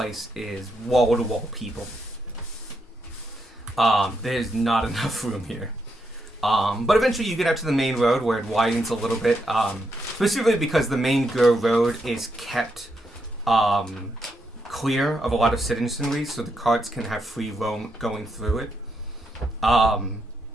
is wall to wall people. There's not enough room here. But eventually you get out to the main road where it widens a little bit. Specifically because the main road is kept clear of a lot of citizenry, so the carts can have free roam going through it.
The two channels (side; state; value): both; normal; correlation 0.81